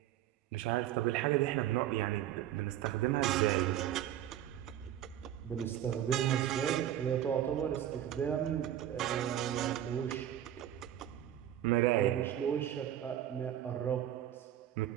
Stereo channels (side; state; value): left; quieter; 11.6 dB